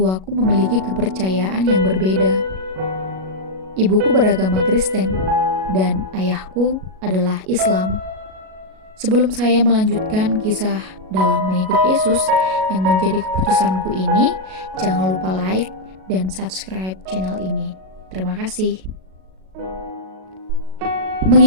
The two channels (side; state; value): left; late; 37 ms